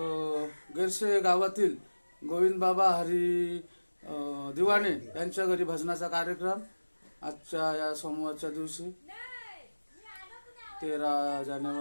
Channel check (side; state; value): both; inverted; correlation -1.00